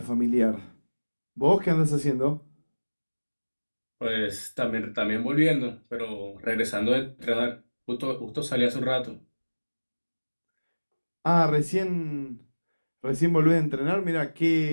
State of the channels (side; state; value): both; inverted; correlation -1.00